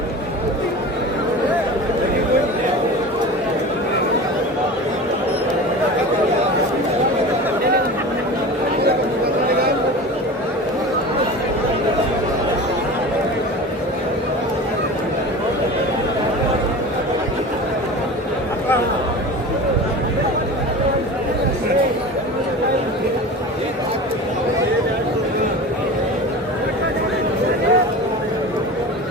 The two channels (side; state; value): both; normal; correlation 0.33